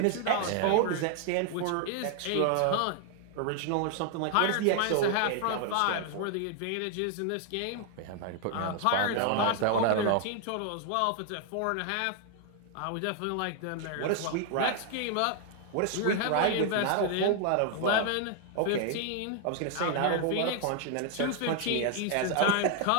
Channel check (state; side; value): different; both; correlation 0.00